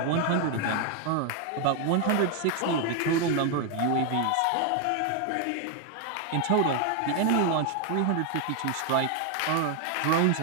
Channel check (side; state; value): both; different; correlation 0.01